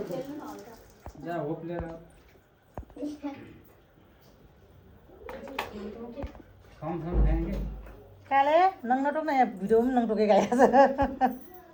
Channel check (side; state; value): both; identical; correlation 1.00